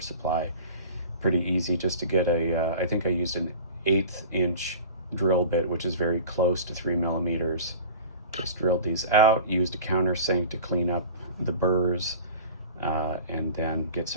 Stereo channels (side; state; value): both; inverted; correlation -0.38